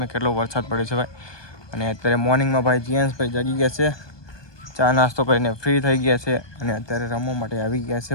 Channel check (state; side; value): late; right; 1.2 ms